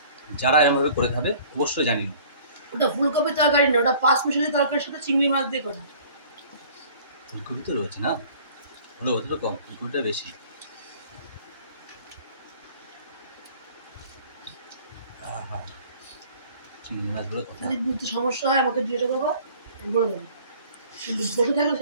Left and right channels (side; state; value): both; inverted; correlation -0.50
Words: যারা এরকমভাবে করে খাবে অবশ্যই জানিও। ওটা ফুলকপি তরকারি না, ওটা পাঁচ মিশালি তরকারির সাথে চিংড়ি মাছ দিয়ে করা। ফুলকপি তো রয়েছে না, হলো ওদের কম, ফুলকপিটা বেশি। চিংড়ি মাছগুলো কথা যদি বুঝতে সমস্যা হয় আমাকে দিয়ে দেবো, বলে দেবো। কিন্তু বসে থাকলে